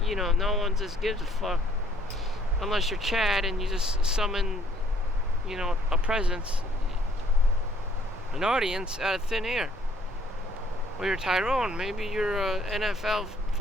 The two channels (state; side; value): normal; both; correlation 0.62